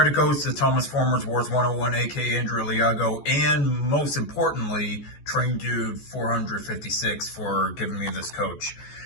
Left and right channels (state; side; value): late; right; 14 ms